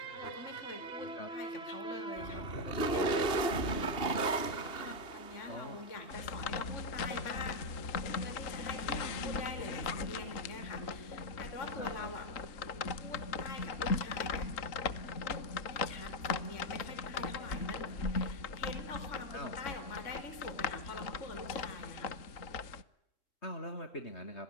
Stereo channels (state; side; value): late; right; 2.8 ms